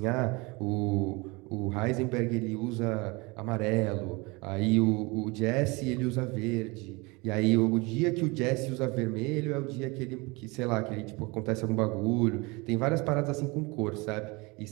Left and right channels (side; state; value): left; quieter; 26.0 dB